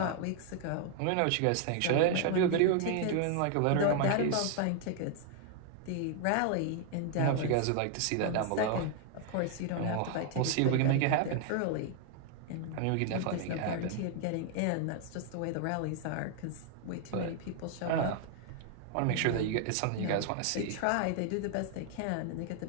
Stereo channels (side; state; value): both; different; correlation 0.00